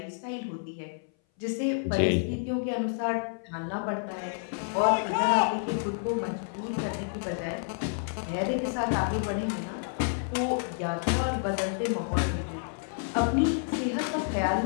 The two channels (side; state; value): right; silent; 57 dB below the other